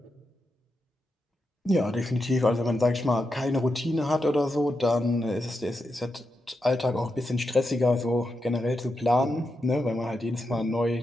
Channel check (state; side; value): normal; both; correlation 0.86